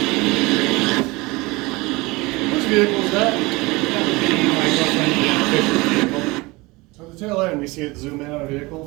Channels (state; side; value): quieter; left; 23.3 dB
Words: Whose vehicle is that? My girlfriend, Fisher's vehicle. So at the tail end, we see it zoom in on a